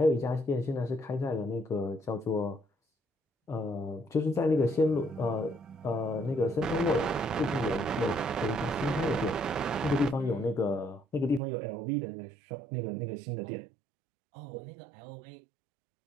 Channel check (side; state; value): left; drops out; at 11.4 s